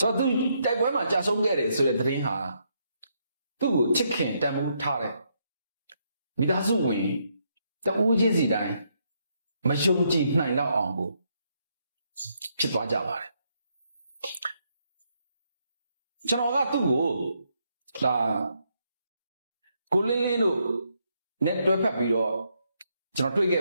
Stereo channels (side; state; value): both; inverted; correlation -0.76